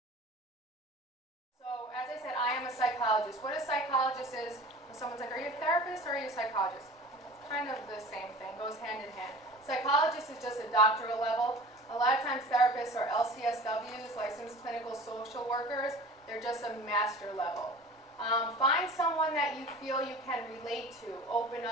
So, as I said, I am a psychologist. What a psychologist is, when someone's like, are you a therapist or are you a psychologist? It's kind of the same thing, goes hand in hand. Psychologist is just a doctoral level. A lot of times therapists are LCSWs, licensed clinical social workers. They're just a master level. Find someone that you feel you can relate to, open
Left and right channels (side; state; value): both; normal; correlation 0.40